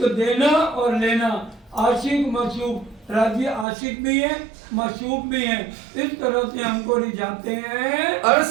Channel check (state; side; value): drops out; left; at 3.7 s